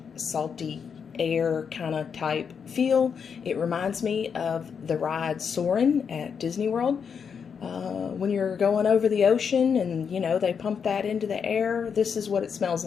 salty air kind of type feel. It reminds me of the ride Soarin' at Disney World. When you're going over the ocean and, you know, they pump that into the air, this is what it smells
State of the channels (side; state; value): right; quieter; 6.7 dB